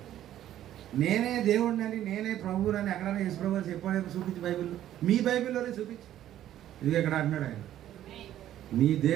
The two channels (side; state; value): left; quieter; 12.2 dB